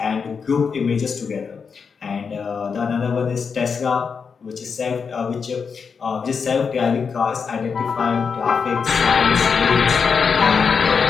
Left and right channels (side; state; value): right; quieter; 5.8 dB